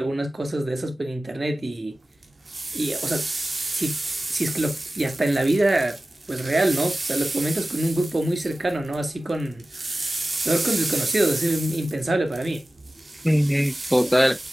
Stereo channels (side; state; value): both; normal; correlation 0.96